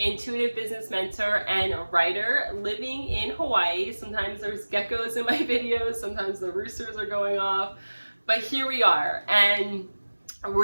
business mentor, and a writer living in Hawaii. Sometimes there's geckos in my videos, sometimes the roosters are going off, but here we are. And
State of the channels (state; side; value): inverted; both; correlation -1.00